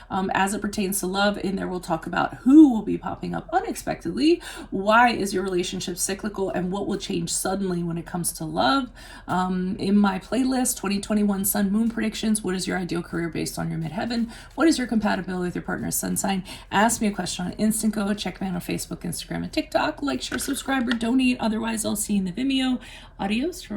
as it pertains to love. In there, we'll talk about who will be popping up unexpectedly, why is your relationship cyclical, and what will change suddenly when it comes to love. In my playlist, 2021 Sun Moon Predictions, what is your ideal career based on your midheaven? What is your compatibility with your partner's sun sign? Ask me a question on Instant Go. Check me out on Facebook, Instagram, and TikTok. Like, share, subscribe, or donate. Otherwise, I'll see you in the Vimeo. Adios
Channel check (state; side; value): identical; both; correlation 1.00